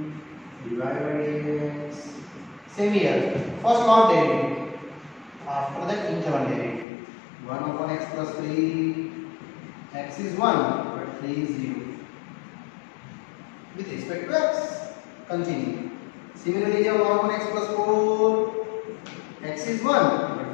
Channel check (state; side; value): drops out; right; at 6.9 s